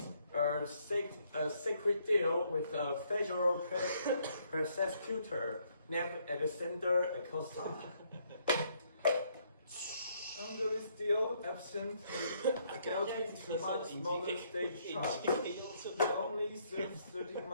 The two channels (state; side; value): inverted; both; correlation -0.70